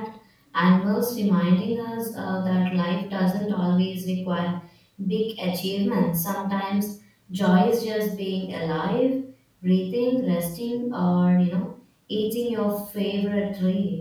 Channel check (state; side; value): identical; both; correlation 1.00